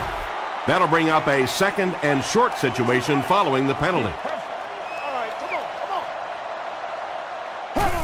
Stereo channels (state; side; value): identical; both; correlation 1.00